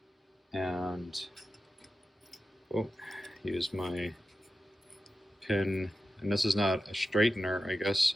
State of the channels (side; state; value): both; normal; correlation 0.92